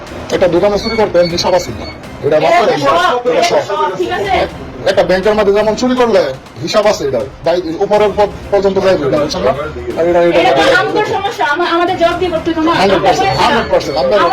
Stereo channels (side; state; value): both; identical; correlation 1.00